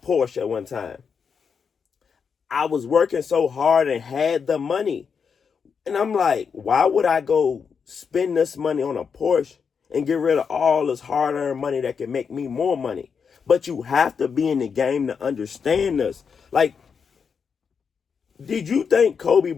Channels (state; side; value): quieter; right; 6.2 dB